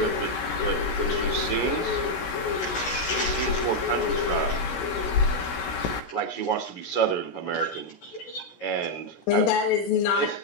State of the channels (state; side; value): late; right; 16 ms